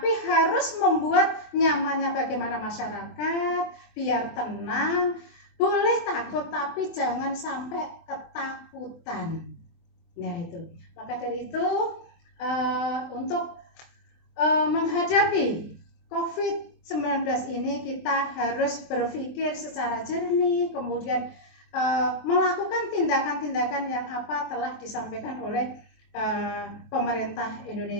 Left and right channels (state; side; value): late; right; 24 ms